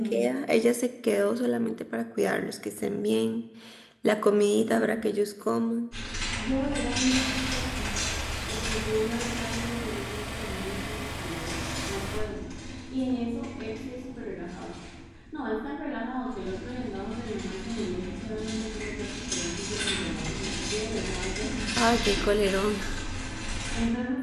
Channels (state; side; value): identical; both; correlation 1.00